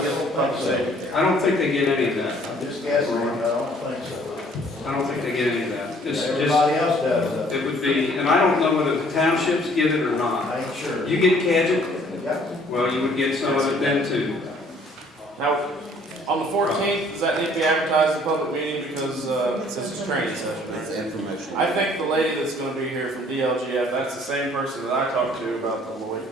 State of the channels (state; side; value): normal; both; correlation 0.58